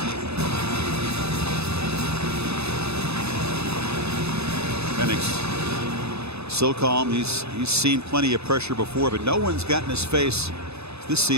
Penix so calm. He's seen plenty of pressure before, but no one's gotten his face this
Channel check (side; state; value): left; late; 0.79 ms